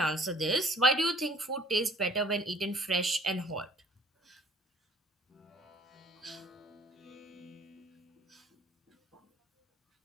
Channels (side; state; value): both; normal; correlation 0.55